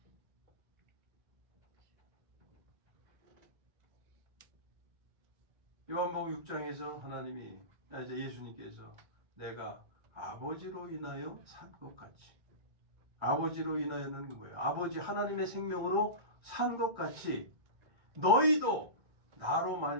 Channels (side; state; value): left; late; 2.1 ms